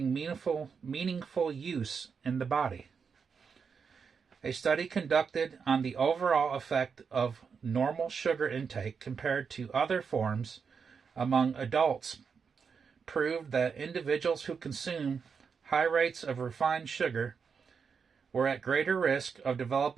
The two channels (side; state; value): left; quieter; 6.0 dB